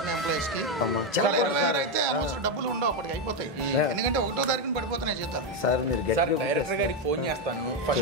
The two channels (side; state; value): both; normal; correlation 0.06